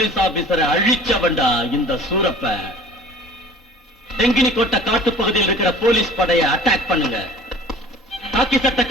ஆபீசரை அழிச்சவன்டா இந்த சூரப்ப. தெங்கினி கோட்டை காட்டு பகுதியில் இருக்கிற போலீஸ் படையை அட்டாக் பண்ணுங்க. காக்கி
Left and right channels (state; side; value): normal; both; correlation 0.45